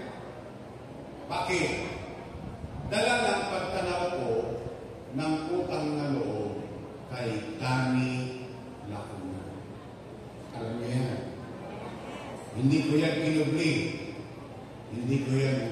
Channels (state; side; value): identical; both; correlation 1.00